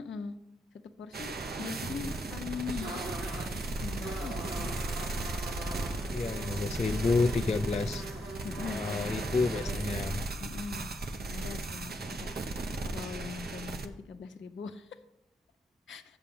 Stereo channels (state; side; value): normal; both; correlation 0.78